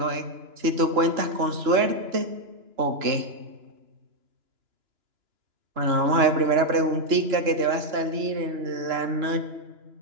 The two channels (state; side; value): late; left; 2.9 ms